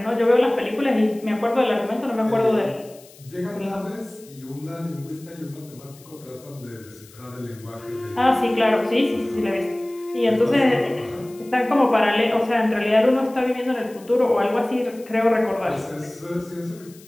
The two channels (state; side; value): noise; left; hiss, 24 dB below the sound